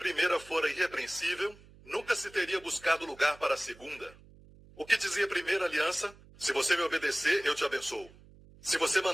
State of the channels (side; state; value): right; noise; hum, 23 dB below the sound